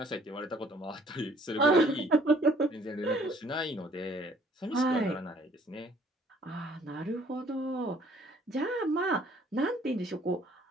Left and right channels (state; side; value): normal; both; correlation 0.59